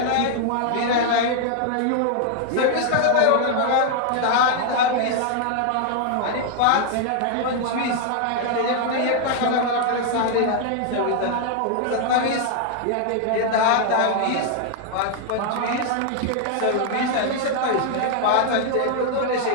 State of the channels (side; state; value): both; different; correlation 0.00